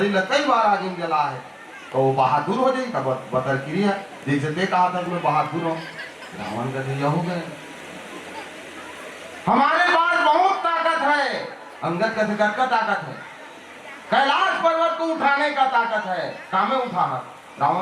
लग कई बार आग में जला है तो वो बहादुर हो जाए। तब बतरकिरी है जैसे ते कहा था मैं बहादुर हूँ। रावण कहते यह हो गए हमारे पास बहुत ताकत है। अंगद कहते का ताकत है? कैलाश पर्वत को उठाने का ताकत है, कामे उठा।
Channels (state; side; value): identical; both; correlation 1.00